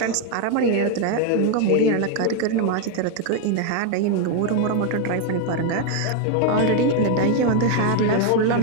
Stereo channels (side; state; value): both; different; correlation 0.01